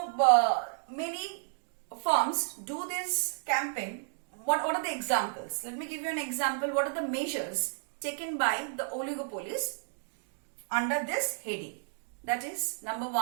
many firms do this campaign what are the examples? Let me give you an example. What are the measures taken by the oligopolies under this heading? That is, number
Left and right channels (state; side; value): silent; left; digital silence